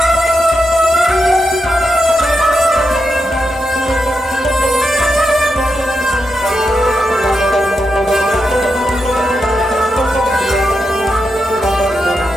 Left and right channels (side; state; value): both; normal; correlation 0.86